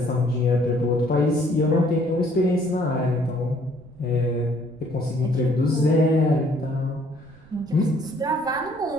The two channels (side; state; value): right; noise; rumble, 24 dB below the sound